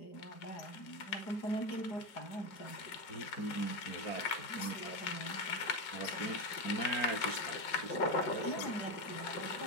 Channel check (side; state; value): right; late; 5.3 ms